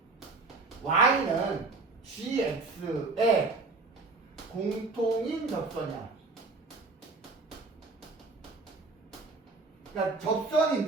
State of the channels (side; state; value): left; quieter; 3.8 dB